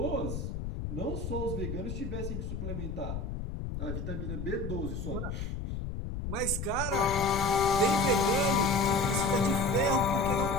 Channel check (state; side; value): noise; left; rumble, 5 dB below the sound